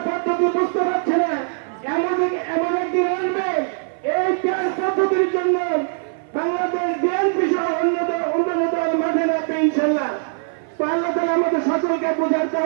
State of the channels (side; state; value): left; silent; 55 dB below the other